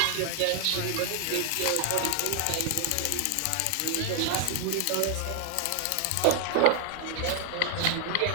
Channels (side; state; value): both; different; correlation 0.00